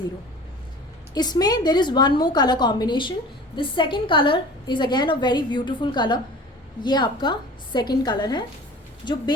इसमें there is one more colour combination. This second colour is again a very beautiful colour. ये आपका सेकेंड कलर है. जो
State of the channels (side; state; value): both; normal; correlation 0.41